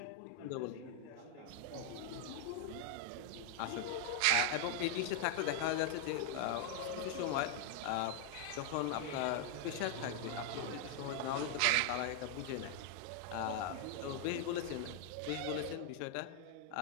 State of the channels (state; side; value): different; both; correlation 0.00